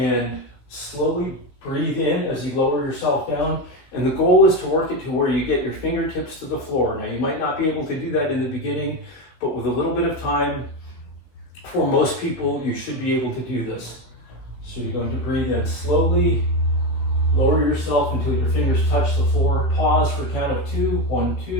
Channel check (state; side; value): late; right; 15 ms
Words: slowly breathe in as you lower yourself down. And the goal is to work it to where you get your fingertips to the floor. Now, you might not be able to do that in the beginning, but with a little bit of time, for most people, you should be able to do this. So you're going to breathe in slowly, lower yourself until your fingers touch the floor. Pause for a count of 2. 1,